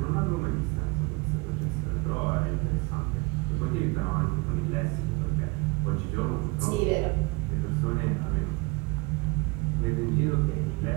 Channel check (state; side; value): quieter; left; 26.7 dB